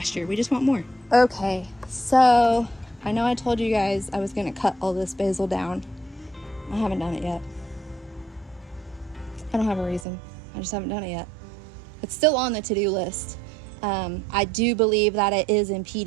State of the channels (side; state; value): left; drops out; at 10.1 s